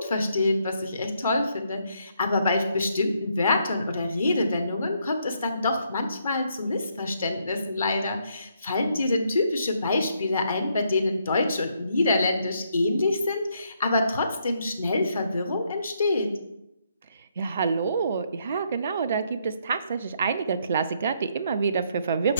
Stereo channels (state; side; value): inverted; both; correlation -0.73